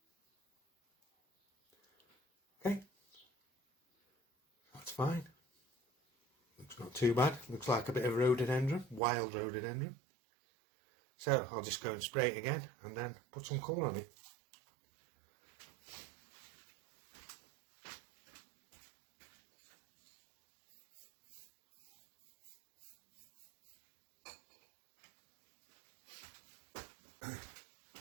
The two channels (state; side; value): drops out; left; at 9.0 s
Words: Okay, that's fine. Looks not too bad. Looks like a bit of rhododendron, wild rhododendron. So I'll just go and spray it again and then put some colour on it.